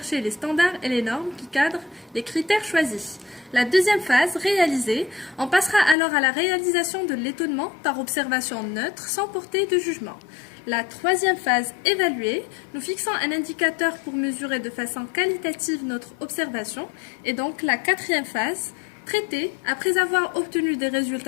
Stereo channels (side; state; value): right; drops out; at 6.0 s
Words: les standards et les normes qui cadrent les critères choisis. La deuxième phase, réaliser, on passera alors à la réalisation de l'étonnement par observation neutre sans porter de jugement. La troisième phase, évaluer, nous fixons un indicateur pour mesurer de façon qualitative notre observation. Et donc la quatrième phase, traiter, après avoir obtenu des